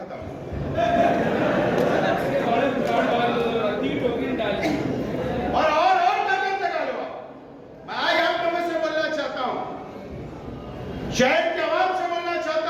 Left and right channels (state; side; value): identical; both; correlation 1.00